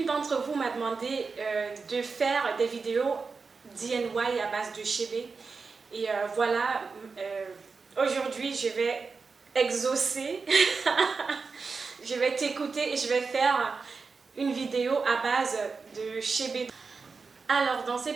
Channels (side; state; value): left; quieter; 4.7 dB